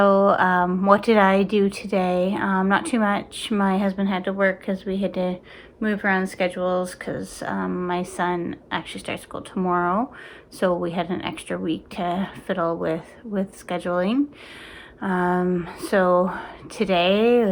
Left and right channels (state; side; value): identical; both; correlation 1.00